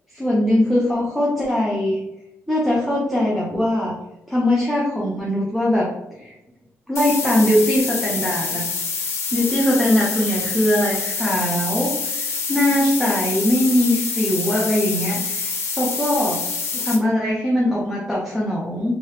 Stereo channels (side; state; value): both; normal; correlation 0.74